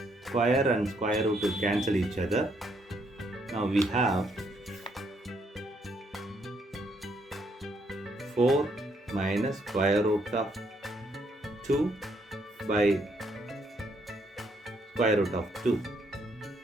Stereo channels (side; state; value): both; normal; correlation 0.72